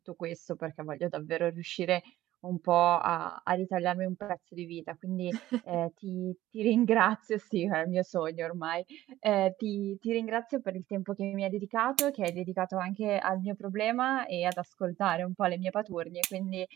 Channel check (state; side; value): quieter; left; 14.8 dB